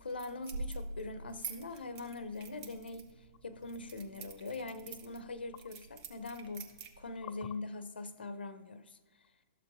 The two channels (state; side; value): inverted; both; correlation -0.62